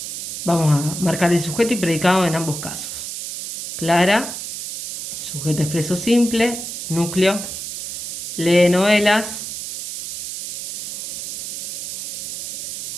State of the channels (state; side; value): noise; right; hiss, 7 dB below the sound